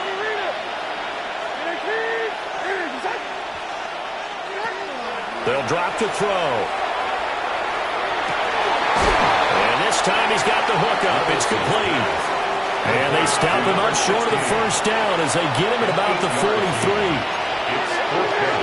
They'll drop the throw. And this time he's got the hook up. It's complete. And they stop him up short of the first down as they get him at about the 43.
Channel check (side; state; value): both; identical; correlation 1.00